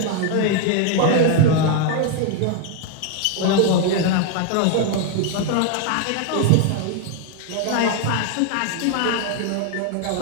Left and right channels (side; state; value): both; different; correlation 0.00